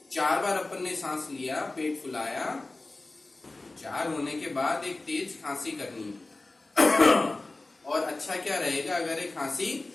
4 बार अपन ने सांस लिया, पेट फुलाया, 4 होने के बाद एक तेज खांसी करनी और अच्छा क्या रहेगा अगर एक खांसी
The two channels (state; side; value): quieter; right; 3.1 dB